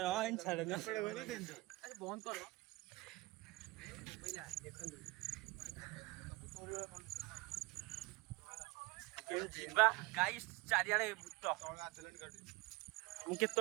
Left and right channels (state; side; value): quieter; left; 22.8 dB